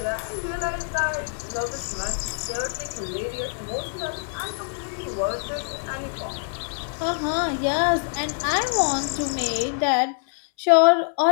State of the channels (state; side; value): silent; right; 62 dB below the other